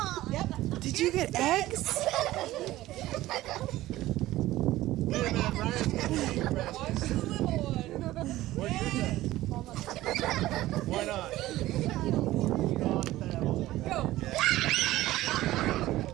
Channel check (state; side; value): quieter; left; 16.2 dB